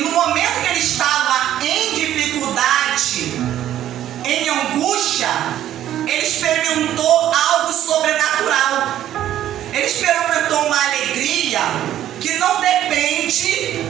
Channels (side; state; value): left; quieter; 11.9 dB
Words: momento que ele estava em dificuldade, em angústia, ele experimentou algo sobrenatural. Ele experimentou uma alegria que não depende